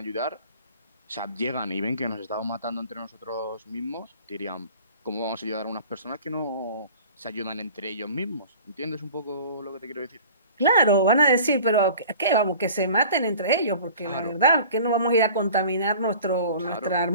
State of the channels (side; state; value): both; inverted; correlation -0.44